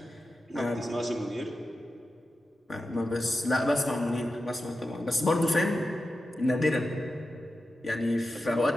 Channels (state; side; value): normal; both; correlation 0.91